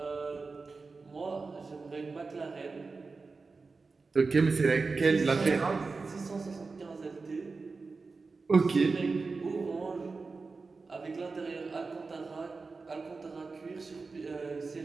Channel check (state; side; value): quieter; left; 4.2 dB